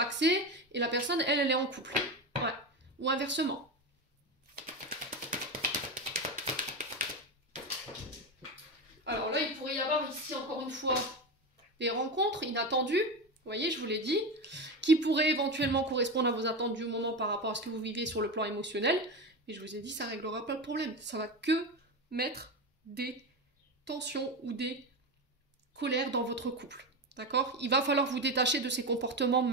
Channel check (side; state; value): both; normal; correlation 0.19